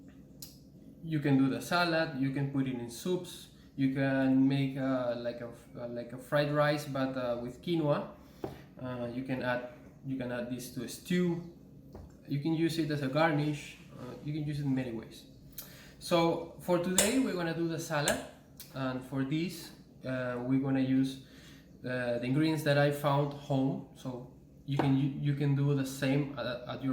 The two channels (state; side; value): identical; both; correlation 1.00